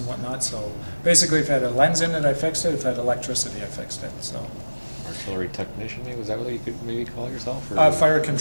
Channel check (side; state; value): both; inverted; correlation -1.00